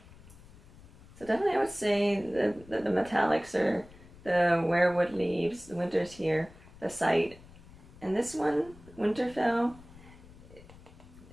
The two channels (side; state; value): left; noise; rumble, 21 dB below the sound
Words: definitely I would say the metallics are the Weirwood Leaves, the Winter's here, The Sight, and this one, Winterfell,